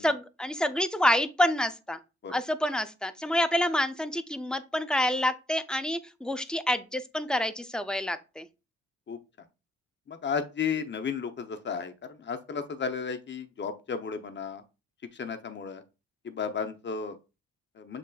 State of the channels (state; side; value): normal; both; correlation 0.70